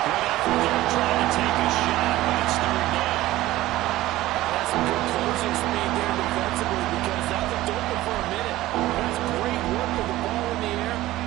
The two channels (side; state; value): left; quieter; 16.4 dB